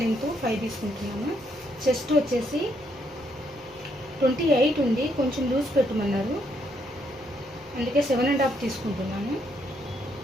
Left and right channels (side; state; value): both; normal; correlation 0.74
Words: లెంత్ 5 తీసుకుంటున్నాను. చెస్ట్ వచ్చేసి 28 ఉంది, కొంచెం లూజ్ పెట్టమన్నారు, అందుకే 7.5 తీసుకుంటున్నాను.